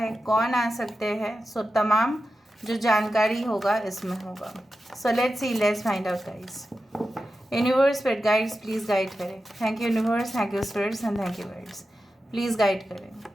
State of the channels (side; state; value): both; normal; correlation 0.92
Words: कौन आ सकते हैं। सो तमाम जो जानकारी होगा इसमें होगा। So let's see, let's find out guys. Universe spirit guides please guide करें। Thank you universe, thank you spirits and thank you guides, please guide करें।